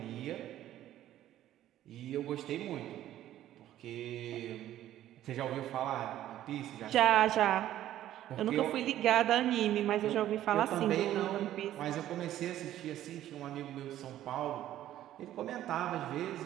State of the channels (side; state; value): left; quieter; 12.8 dB